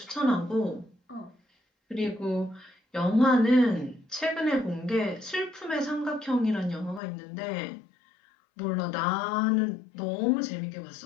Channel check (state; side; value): drops out; right; at 7.0 s